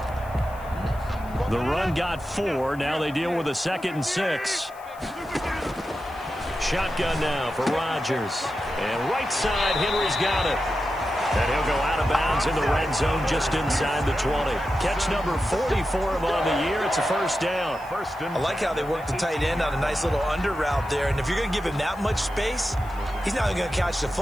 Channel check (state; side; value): noise; left; hiss, 25 dB below the sound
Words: The run got 4. Now they deal with a 2nd and 6. Shotgun now for Rodgers. And right side, Henry's got it. And he'll go out of bounds in the red zone just inside the 20. Catch number 40 for him on the year. It's a first down. I like how they work the tight end on a nice little under route there. And if you're going to give him that much space, he's not going to catch the